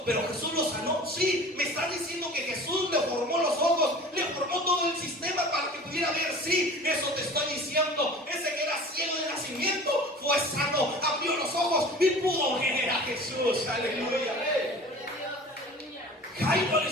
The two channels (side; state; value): both; normal; correlation 0.41